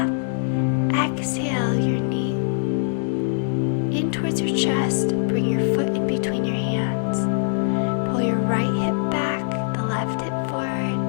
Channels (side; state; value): right; silent; digital silence